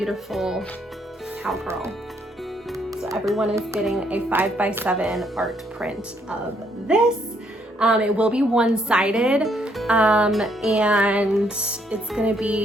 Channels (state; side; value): normal; both; correlation 0.71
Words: cowgirl. So everyone is getting a 5x7 art print of this. It will be one-sided, and it's gonna